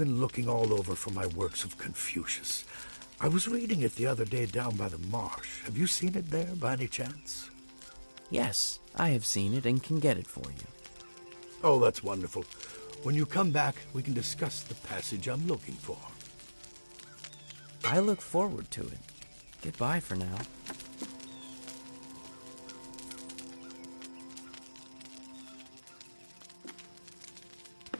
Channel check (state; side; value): inverted; both; correlation -1.00